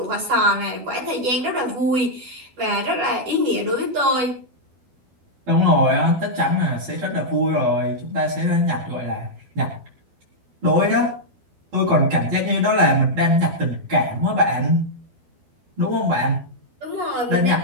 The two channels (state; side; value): late; left; 12 ms